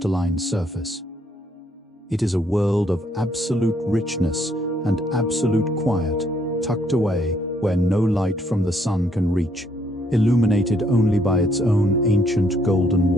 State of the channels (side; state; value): both; normal; correlation 0.70